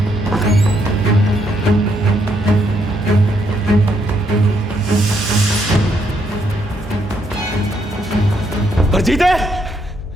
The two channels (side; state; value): both; normal; correlation 0.74